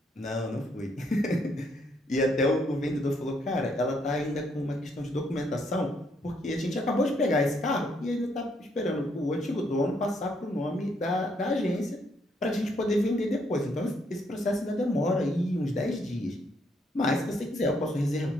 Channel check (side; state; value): both; normal; correlation 0.72